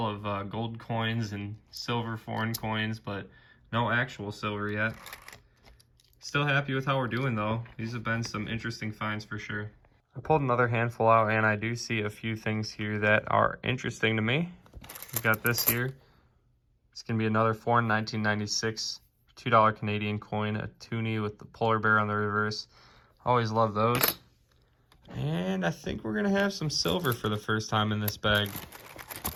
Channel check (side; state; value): both; identical; correlation 1.00